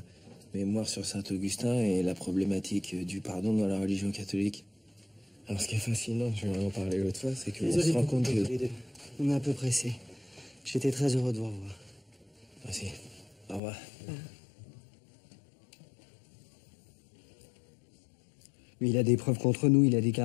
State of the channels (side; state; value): right; drops out; at 13.6 s